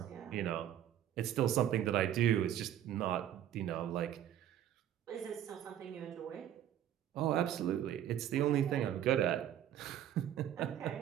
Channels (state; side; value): quieter; left; 10.9 dB